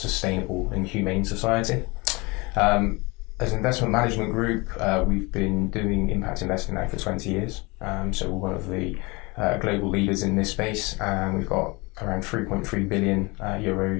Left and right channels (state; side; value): quieter; right; 26.0 dB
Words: and humane society. As an investment management group, we've been doing impact investing now for 20 years. So we're one of the global leaders in this space, and we've got around 3.3 billion